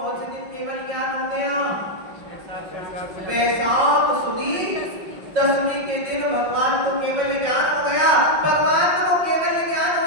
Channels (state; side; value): late; left; 5.5 ms